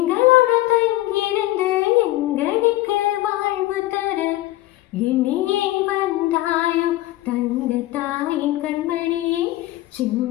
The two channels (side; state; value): right; quieter; 16.7 dB